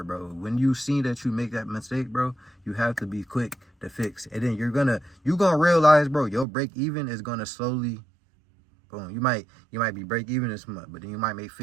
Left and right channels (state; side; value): drops out; left; at 6.5 s